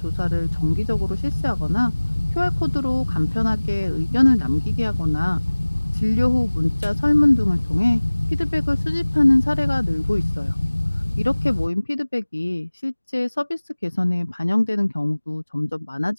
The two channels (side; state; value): both; inverted; correlation -1.00